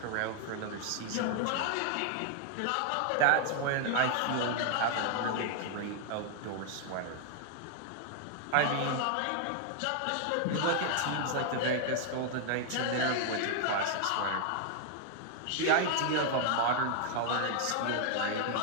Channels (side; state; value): both; different; correlation 0.00